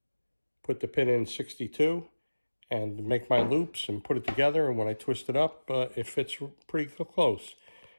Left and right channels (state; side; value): inverted; both; correlation -1.00